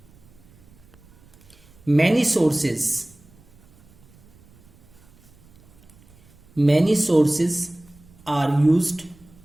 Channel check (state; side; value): noise; right; rumble, 27 dB below the sound